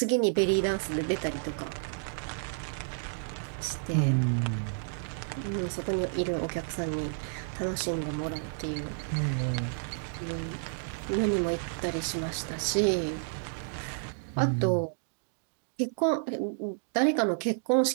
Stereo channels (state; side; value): silent; left; digital silence